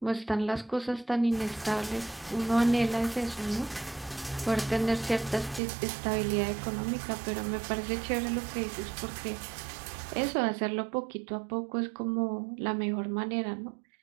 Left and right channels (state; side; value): drops out; left; at 5.6 s